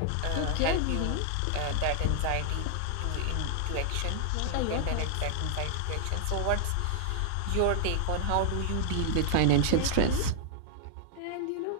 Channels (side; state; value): both; different; correlation 0.00